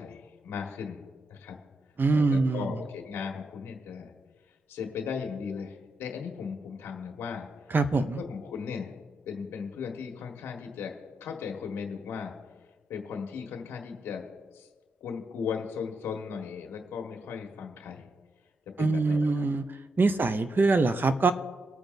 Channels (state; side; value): normal; both; correlation 0.82